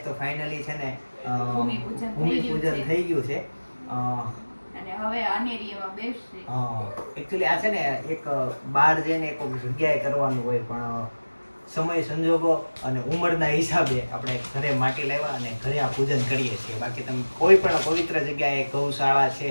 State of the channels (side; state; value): both; inverted; correlation -1.00